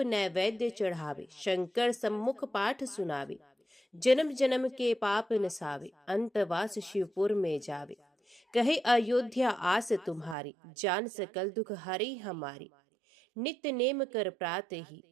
चढ़ावे, शंकर सम्मुख पाठ सुनावे। जन्म जन्म के पाप नसावे, अंतवास शिवपुर में जावे। कहे अयोध्या आस तुम्हारी, जान सकल दुख हरी हमारी। नित्य नेम कर प्रात ही,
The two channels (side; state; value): left; drops out; at 10.4 s